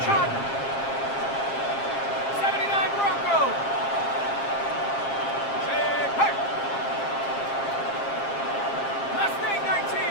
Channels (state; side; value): late; right; 7.4 ms